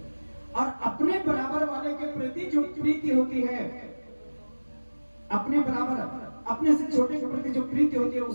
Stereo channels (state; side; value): inverted; both; correlation -1.00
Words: और अपने बराबर वाले के प्रति जो प्रीति होती है, अपने बराबर, अपने से छोटे के प्रति जो प्रीति होती है